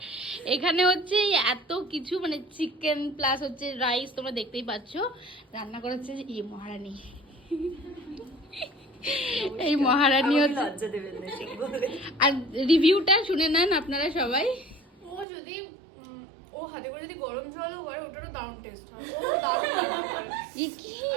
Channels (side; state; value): left; drops out; at 15.2 s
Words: এখানে হচ্ছে এত কিছু মানে চিকেন প্লাস হচ্ছে রাইস, তোমরা দেখতেই পাচ্ছ। রান্না করেছে এই মহারানী। এই মহারানী হচ্ছে। আর রিভিউটা শুনে নেন আপনারা সবাই। ও যদি ও হাতে করে যদি গরম জলও করে ওটারও দারুণ টেস্ট হয়।